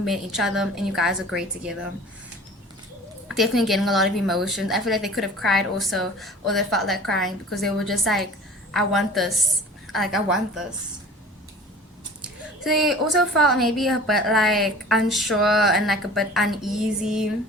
each other and you guys are great together. Definitely getting a lot of emotions. I feel like they could have cried also, or they felt like crying because they were just like, I want this. Like I want this. So they also felt maybe a bit like unsure and like a bit uneasy,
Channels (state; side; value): normal; both; correlation 0.43